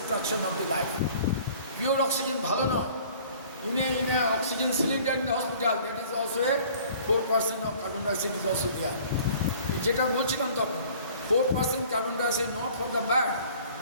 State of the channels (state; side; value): inverted; both; correlation -0.51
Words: of the life. Pure oxygen ভালো নয়। In a oxygen cylinder in the hospital that is also a 4% of carbon dioxide is also there. যেটা বলছিলাম তখন 4% carbon dioxide not for the bad,